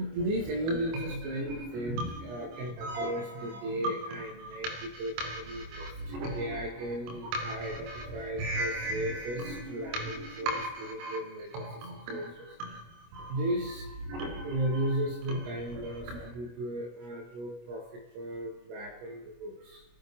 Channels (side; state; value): left; late; 25 ms